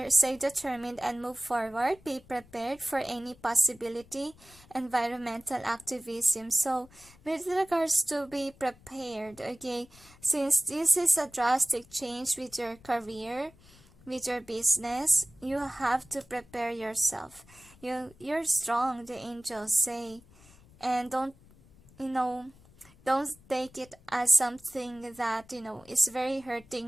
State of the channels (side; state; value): left; noise; rumble, 25 dB below the sound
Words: stay determined and move forward. Be prepared for any possibility. Environmental activism. So with regards to be prepared, okay, since this is a drastic change with your career, with your business, you have to prepare yourself. You're strong, the angels say, and don't take it as something that is very